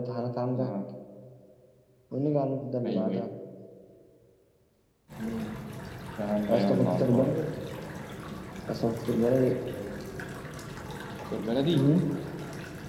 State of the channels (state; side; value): identical; both; correlation 1.00